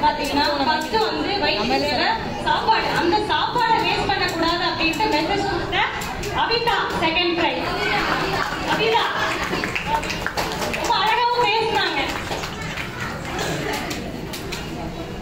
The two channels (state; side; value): identical; both; correlation 1.00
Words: பாத்தீங்கன்னா ஃபர்ஸ்ட் வந்து வயிற்றுல சாப்பாடு, அந்த சாப்பாடை வேஸ்ட் பண்ணக்கூடாது அப்படின்ட்டு மெசேஜ் கொடுத்த அபிதா செகண்ட் ப்ரைஸ். அபிதா ரொம்ப அழகாவும் பேசினாங்க.